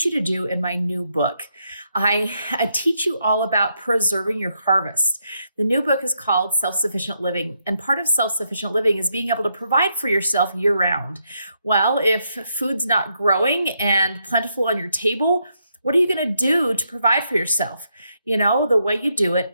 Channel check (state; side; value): inverted; both; correlation -0.78